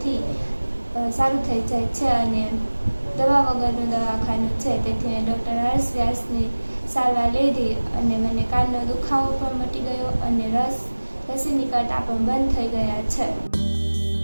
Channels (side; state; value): both; inverted; correlation -1.00